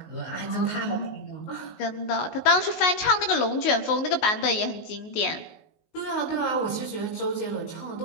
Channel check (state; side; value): late; right; 19 ms